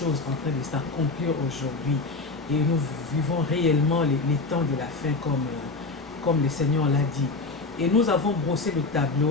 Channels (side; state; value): right; quieter; 3.6 dB